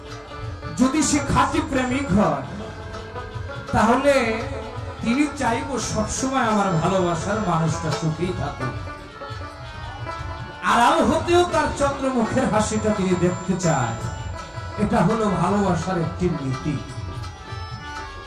যদি সে খাঁটি প্রেমিক হয় তাহলে তিনি চাইব সবসময় আমার ভালোবাসার মানুষটা সুখেই থাকুক আড়াল হতেও তার চন্দ্রমুখের হাসিটা তিনি দেখতে চায় এটা হলো ভালোবাসার একটি নীতি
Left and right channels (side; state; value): both; identical; correlation 1.00